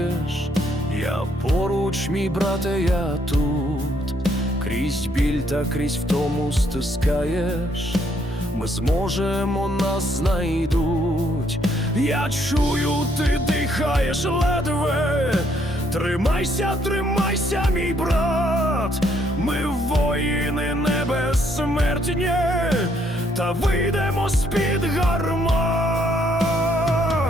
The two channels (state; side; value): normal; both; correlation 0.70